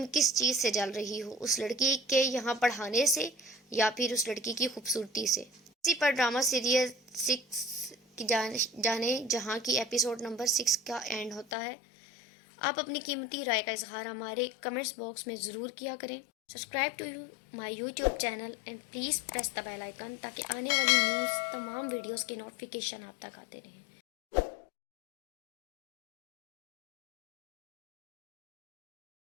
کس چیز سے جل رہی ہو، اس لڑکی کے یہاں پڑھانے سے یا پھر اس لڑکی کی خوبصورتی سے؟ اسی پر ڈرامہ سیریل 6 کی جانے جہاں کی ایپیسوڈ نمبر 6 کا اینڈ ہوتا ہے۔ آپ اپنی قیمتی رائے کا اظہار ہمارے کمنٹس باکس میں ضرور کیا کریں۔ Subscribe to my YouTube channel and please press the bell icon تاکہ آنے والی نیوز تمام ویڈیوز کے نوٹیفیکیشن آپ تک آتے رہیں.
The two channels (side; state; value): right; drops out; at 11.5 s